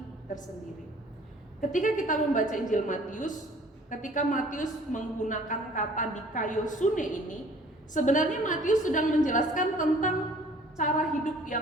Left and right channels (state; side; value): normal; both; correlation 0.53